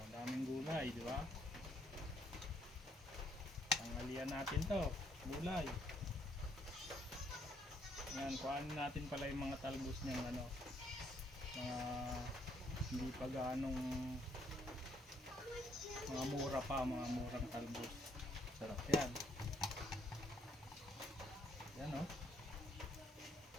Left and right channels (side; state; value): both; normal; correlation 0.69